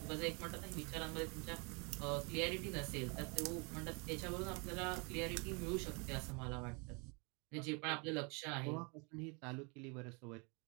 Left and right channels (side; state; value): left; quieter; 32.4 dB